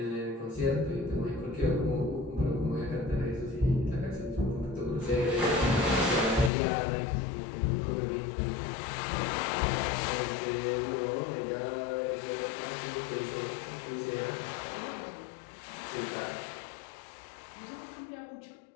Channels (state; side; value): drops out; right; at 6.5 s